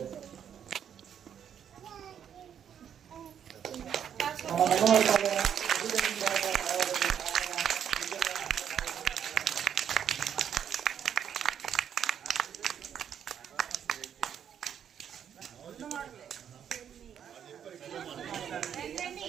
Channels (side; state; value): left; quieter; 8.8 dB